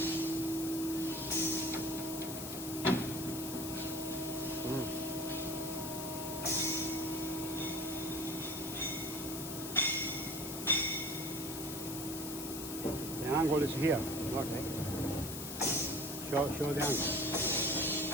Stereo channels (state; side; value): noise; left; hiss, 8 dB below the sound